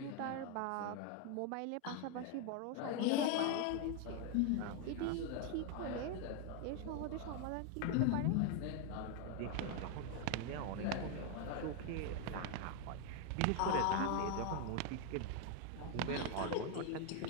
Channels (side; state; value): both; different; correlation 0.01